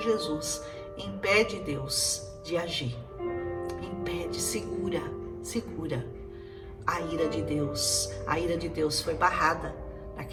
Jesus, impede Deus de agir, impede, segura a ira de Deus. A ira de Deus foi barrada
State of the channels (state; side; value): identical; both; correlation 1.00